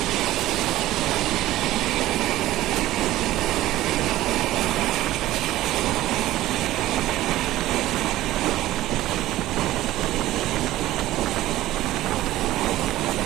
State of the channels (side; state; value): left; quieter; 15.5 dB